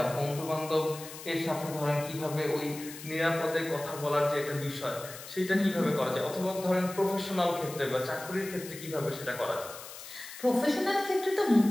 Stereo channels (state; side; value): noise; left; hiss, 13 dB below the sound